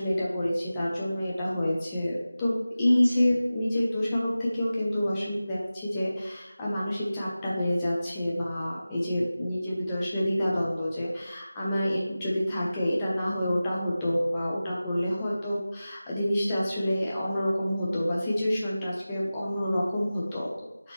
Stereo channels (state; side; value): inverted; both; correlation -0.96